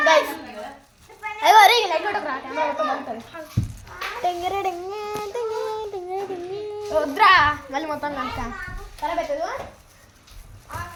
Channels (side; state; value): both; identical; correlation 1.00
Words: గైస్. అయ్యో అరే లైట్ కొట్టకురా కెమెరా మొత్తం బాగుంటుంది. వద్దురా మళ్ళీ మొత్తం కనుక ఖరాబ్ అవుతుంది